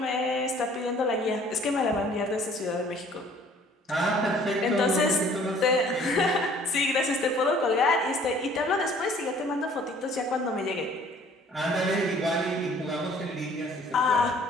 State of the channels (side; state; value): both; normal; correlation 0.55